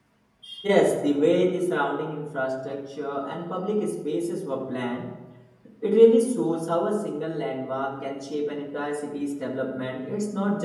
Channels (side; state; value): both; identical; correlation 1.00